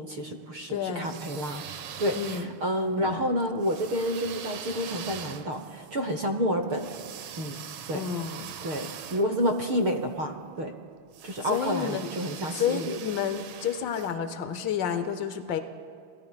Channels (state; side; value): late; left; 7.2 ms